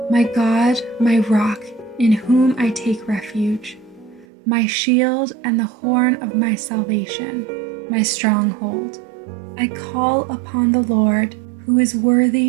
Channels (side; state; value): left; drops out; at 4.2 s